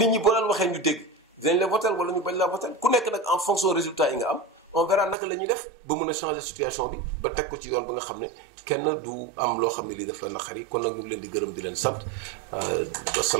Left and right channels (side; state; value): left; drops out; at 5.2 s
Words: ñi boo leen waxee ñu dégg dinañ la voter wala ñu bañ la voter ku nekk nag en fonction résultat yi nga am on verra naka la ñuy def ba mën a changer situation bi ba teg ko ci yoon ba nga xam ne kenn du am loo xam ne lii daf la naqari kon nag ñu ngi leen di gërëm di leen sant